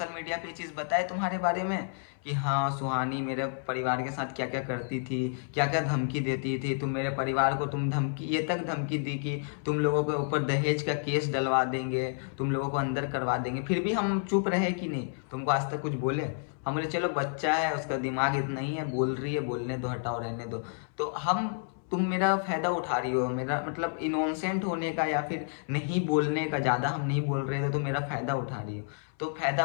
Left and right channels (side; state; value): right; silent; 58 dB below the other